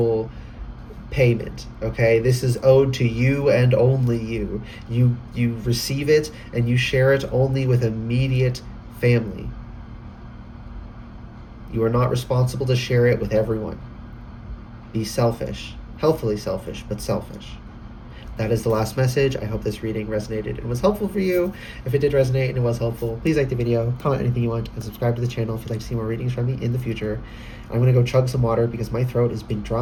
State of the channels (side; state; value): both; identical; correlation 1.00